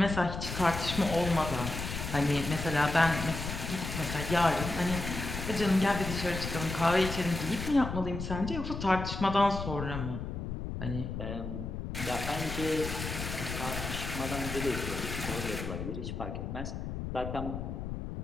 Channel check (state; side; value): noise; left; rumble, 5 dB below the sound